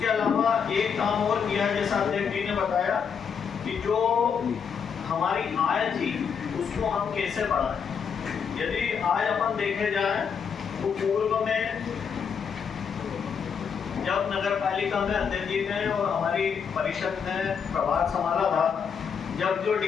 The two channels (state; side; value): quieter; right; 6.7 dB